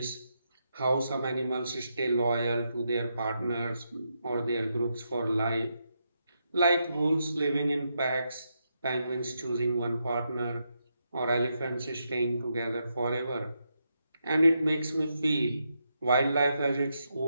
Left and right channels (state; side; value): inverted; both; correlation -0.82